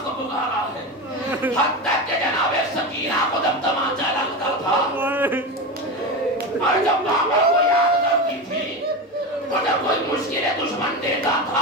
کو پکارا ہے، حتی تک کہ جناب سکینہ کو جب تمانچہ لگتا تھا اور جب بابا کو یاد کرتی تھی اور جب کوئی مشکل دشمن دیتا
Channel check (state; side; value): normal; both; correlation 0.20